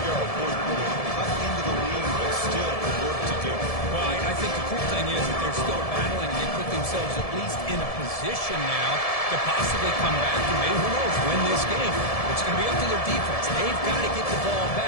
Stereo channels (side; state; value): right; late; 1.7 ms